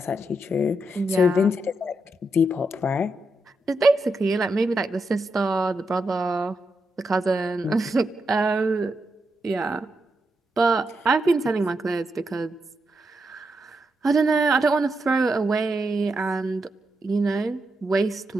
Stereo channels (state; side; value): normal; both; correlation 0.84